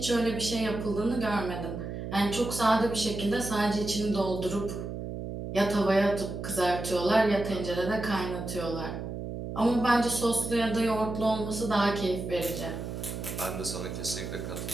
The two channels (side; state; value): right; noise; hum, 6 dB below the sound